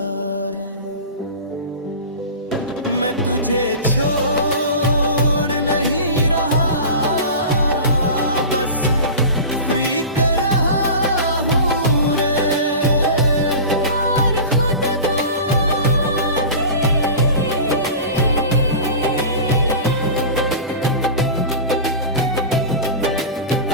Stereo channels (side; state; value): both; inverted; correlation -0.31